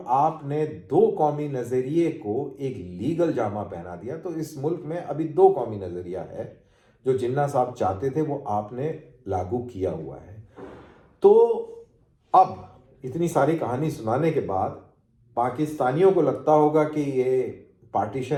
आपने दो कौमी नजरिए को एक लीगल जामा पहना दिया। तो इस मुल्क में अभी दो कौमी नजरिया है, जो जिन्ना साहब चाहते थे वो आपने लागू किया हुआ है। तो अब इतनी सारी कहानी सुनाने के बाद पाकिस्तानियों को लगता होगा कि ये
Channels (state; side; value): identical; both; correlation 1.00